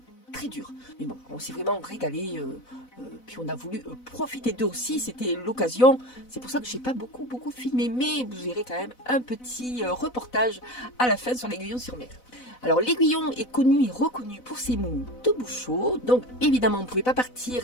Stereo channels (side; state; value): right; late; 4.0 ms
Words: très dur. Mais bon, on s'est vraiment régalé. Puis on a voulu profiter d'eux aussi, c'était l'occasion. C'est pour ça que j'ai pas beaucoup filmé, mais vous verrez quand même un petit reportage à la fin sur l'Aiguillon-sur-Mer. Alors l'Aiguillon est connu et reconnu pour ses moules de bouchot, donc évidemment on ne pouvait pas